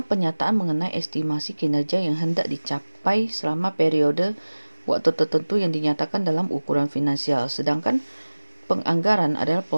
penyataan mengenai estimasi kinerja yang hendak dicapai selama periode waktu tertentu yang dinyatakan dalam ukuran finansial. Sedangkan penganggaran adalah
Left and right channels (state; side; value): inverted; both; correlation -1.00